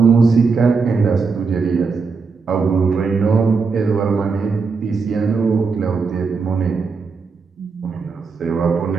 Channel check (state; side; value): quieter; left; 4.9 dB